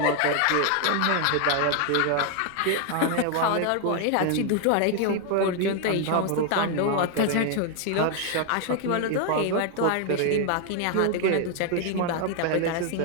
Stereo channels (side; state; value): both; different; correlation 0.00